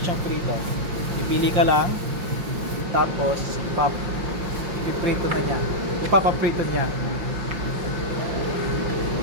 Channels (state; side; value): late; left; 5.7 ms